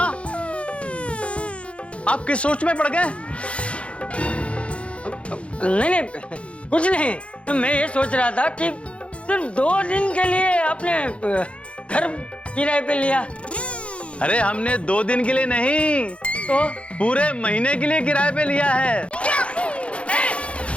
आप किस सोच में पड़ गए? नहीं नहीं, कुछ नहीं, मैं ये सोच रहा था कि सिर्फ 2 दिन के लिए आपने घर किराए पे लिया। अरे हमने 2 दिन के लिए नहीं, तो पूरे महीने के लिए किराए पे लिया है।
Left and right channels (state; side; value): late; right; 0.061 ms